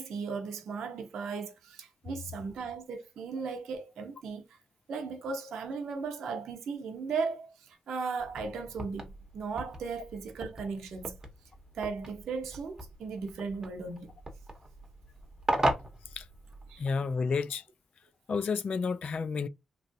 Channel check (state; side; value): normal; both; correlation 0.79